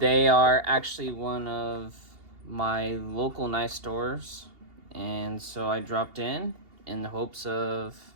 are actually one of my local knife stores, and so I dropped in the hopes of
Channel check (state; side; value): late; left; 2.8 ms